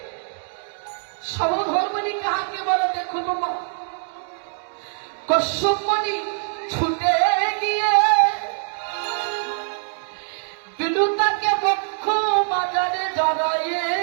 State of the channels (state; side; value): silent; left; 63 dB below the other